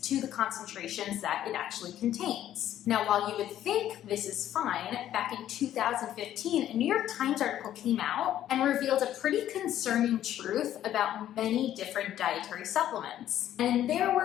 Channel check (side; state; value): right; quieter; 11.8 dB